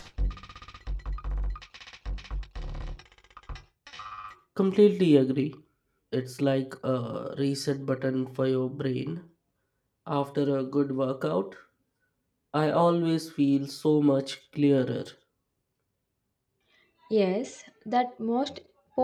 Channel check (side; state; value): both; identical; correlation 1.00